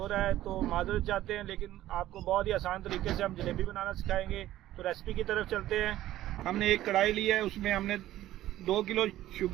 है तो माजरत चाहते हैं, लेकिन आपको बहुत ही आसान तरीके से हम जलेबी बनाना सिखाएंगे। तो रेसिपी की तरफ चलते हैं। हमने एक कढ़ाई ली है, उसमें हमने 2 किलो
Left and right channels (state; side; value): quieter; left; 14.2 dB